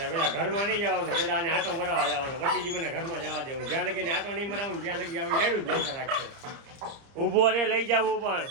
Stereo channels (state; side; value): late; left; 30 ms